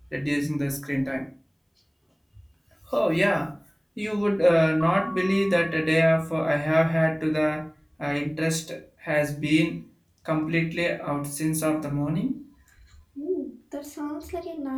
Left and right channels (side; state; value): both; identical; correlation 1.00